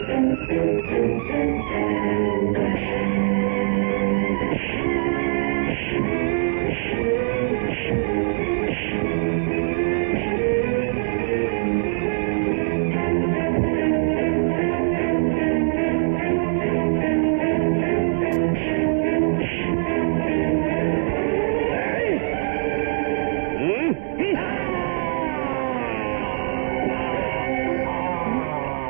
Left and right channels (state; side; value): silent; left; digital silence